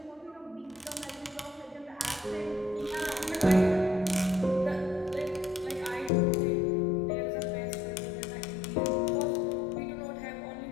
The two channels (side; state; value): right; drops out; at 6.1 s